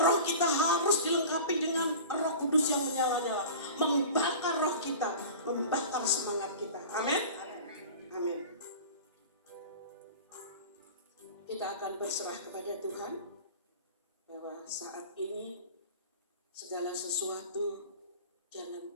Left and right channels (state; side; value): inverted; both; correlation -0.37